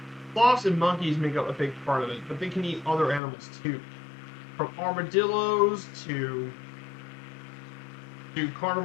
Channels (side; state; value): right; drops out; at 3.2 s